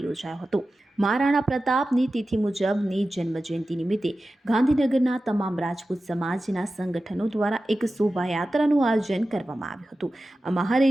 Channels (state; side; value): normal; both; correlation 0.94